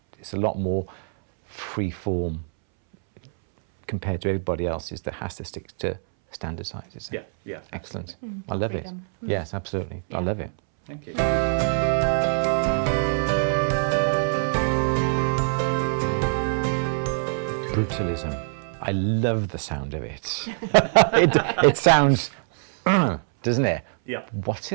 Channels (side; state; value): left; silent; 62 dB below the other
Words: it's a lot more free form compared to everybody else's that has to stick to standard sizes. Yeah, yeah. Excellent. I love it. Freedom. Yes, absolutely. I love it. Thank you. Brutalism. I love the sound of it. It sounds, doesn't it? Yeah. What's